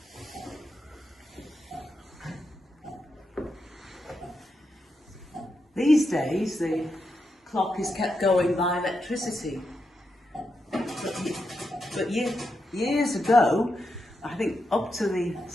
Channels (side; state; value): both; normal; correlation 0.85